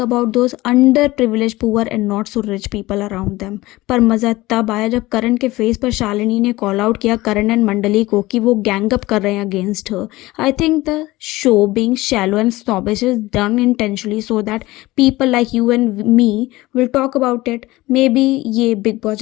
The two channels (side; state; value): right; quieter; 19.1 dB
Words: about those under privilege poor and not so rich people around them. पर मज़ा तब आया जब करण के फेस पर शालिनी ने कॉल आउट किया करण एंड मंडली को कि वो गैंग अप कर रहे हैं against her. I think the show being shallow and snobbish is done intentionally so that people like you and me will talk about it. Maybe ये बिग बॉस